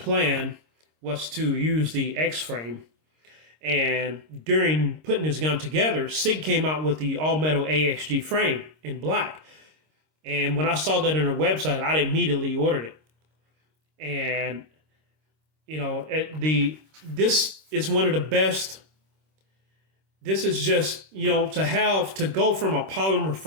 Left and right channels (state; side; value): late; left; 26 ms